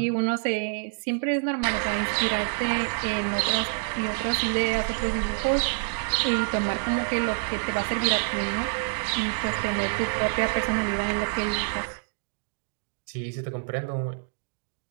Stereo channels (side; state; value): left; silent; digital silence